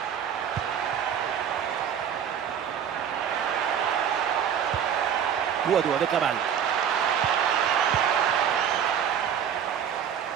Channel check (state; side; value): quieter; left; 8.5 dB